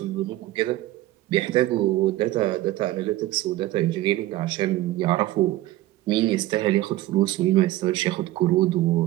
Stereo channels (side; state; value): left; quieter; 16.2 dB